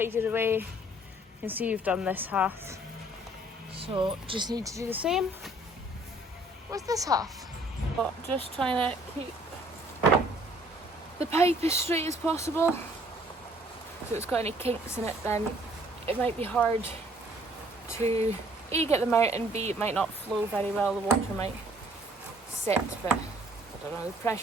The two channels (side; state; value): both; normal; correlation 0.59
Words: away. You can see you've done this half, so just need to do the same with this half. But just trying to keep the pipe as straight as possible. If it's got any kinks in it, then it might be hard to A, get them out, and B, it might not flow very well. The water might sit, but I don't know, the